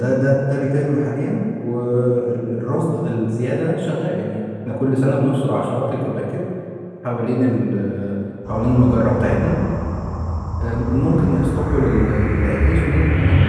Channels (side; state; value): both; identical; correlation 1.00